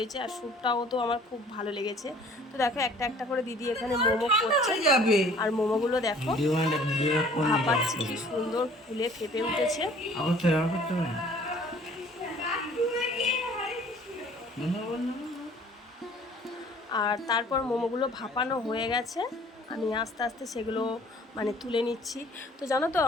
আর স্যুপটাও তো আমার খুব ভালো লেগেছে। তো দেখো একটা একটা করে দিদি এখানে মোমো করছে, আর মোমোগুলো দেখো ভাপাচ্ছে, কি সুন্দর ফুলে ফেপে উঠেছে। আর তারপর মোমোগুলো ভাপানো হয়ে গেছে, আমি আস্তে আস্তে সেগুলো মানে তুলে নিচ্ছি। তো জানো তো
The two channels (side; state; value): both; normal; correlation 0.53